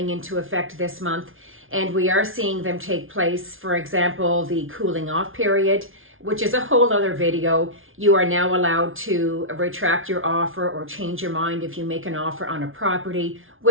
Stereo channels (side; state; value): left; late; 0.59 ms